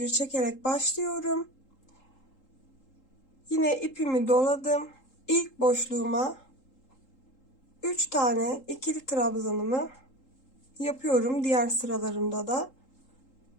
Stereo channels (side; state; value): right; late; 3.8 ms